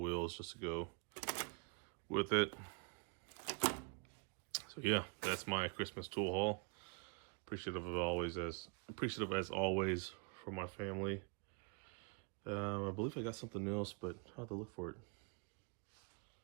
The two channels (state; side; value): quieter; left; 34.7 dB